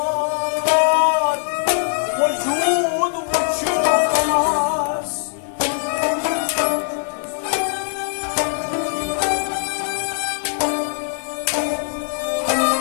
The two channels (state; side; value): silent; right; 60 dB below the other